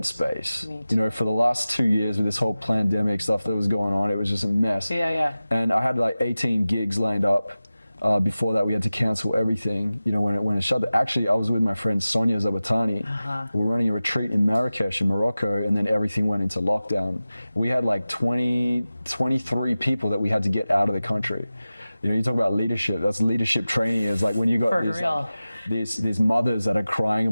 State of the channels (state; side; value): inverted; both; correlation -0.96